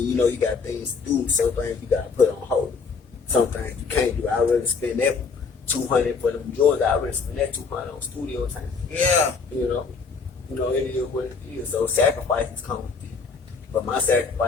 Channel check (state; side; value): quieter; right; 5.0 dB